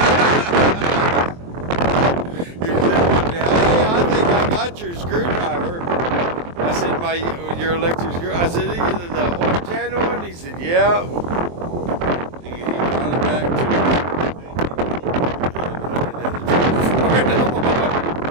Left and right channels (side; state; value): left; late; 23 ms